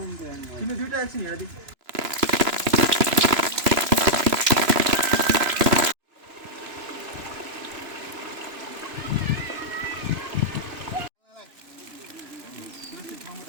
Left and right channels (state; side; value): late; left; 3.0 ms